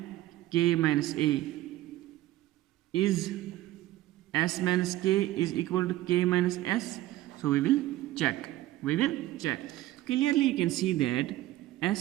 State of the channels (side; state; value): left; quieter; 15.6 dB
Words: K minus A. Is S minus K is equal to K minus S? So, we will check. Clearly, you can see that